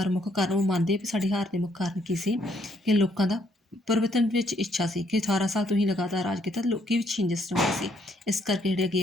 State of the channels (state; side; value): normal; both; correlation 0.70